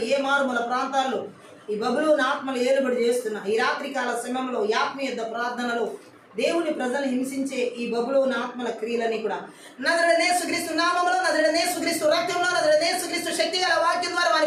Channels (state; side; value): identical; both; correlation 1.00